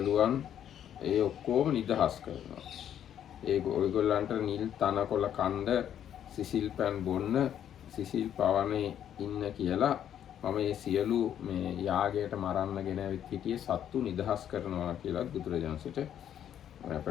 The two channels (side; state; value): right; quieter; 10.0 dB